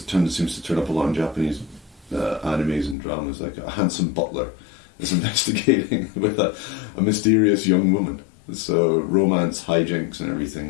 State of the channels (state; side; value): drops out; right; at 3.0 s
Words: that seems to turn up a lot in Japanese animes and dramas, like a handsome butler is investigating with a mysterious young woman. So romance, hijinks, and